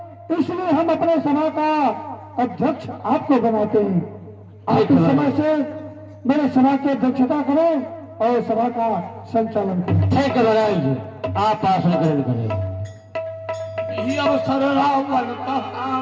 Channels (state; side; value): identical; both; correlation 1.00